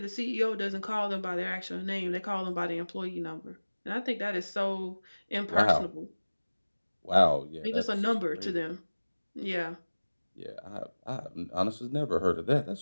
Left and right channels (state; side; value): inverted; both; correlation -1.00